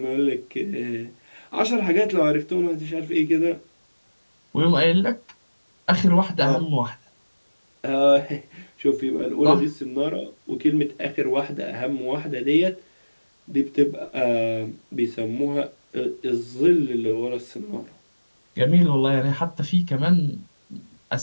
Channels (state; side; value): inverted; both; correlation -1.00